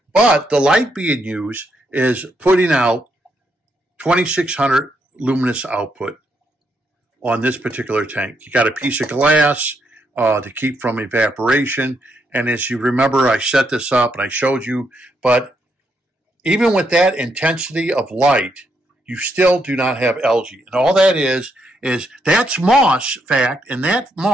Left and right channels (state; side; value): normal; both; correlation 0.77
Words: But the light being used is putting out 2600 luminous output on this particular tank. You got a piece of glass to keep from evaporation. And as you remember, I set this up and I showed you, but even with that intensity of light, you still do not have algae. And all that is that's moss, fact, and that